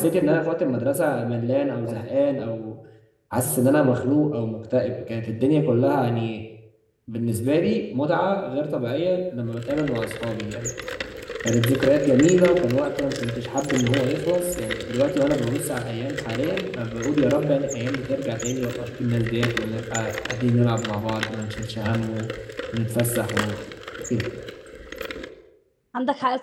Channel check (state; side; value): identical; both; correlation 1.00